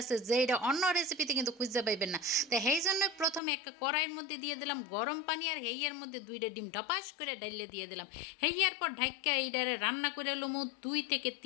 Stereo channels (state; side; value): drops out; right; at 3.4 s